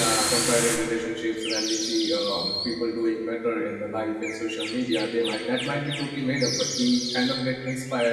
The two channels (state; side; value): identical; both; correlation 1.00